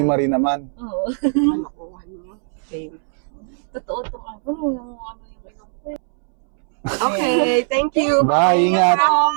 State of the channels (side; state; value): left; silent; 66 dB below the other